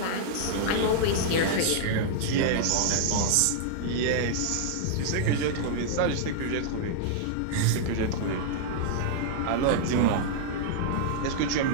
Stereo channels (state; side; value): different; both; correlation -0.01